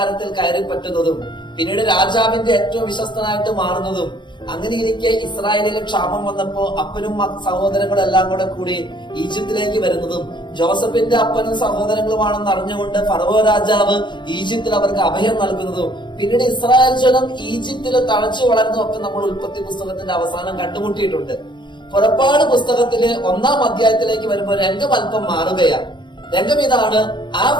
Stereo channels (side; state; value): right; late; 0.22 ms